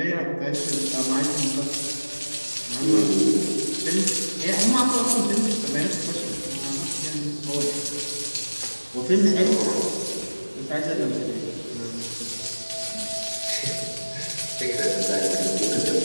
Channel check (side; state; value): both; inverted; correlation -1.00